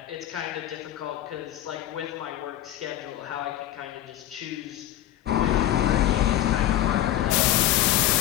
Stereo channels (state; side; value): quieter; right; 12.9 dB